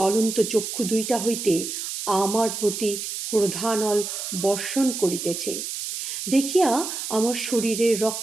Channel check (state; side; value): noise; right; hiss, 5 dB below the sound